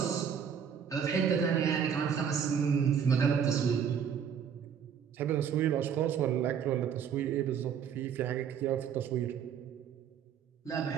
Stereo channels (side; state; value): left; quieter; 7.8 dB